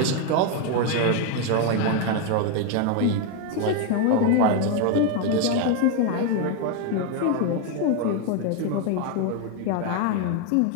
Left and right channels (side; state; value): both; different; correlation 0.01